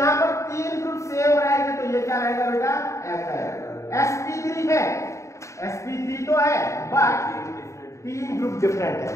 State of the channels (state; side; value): late; right; 0.14 ms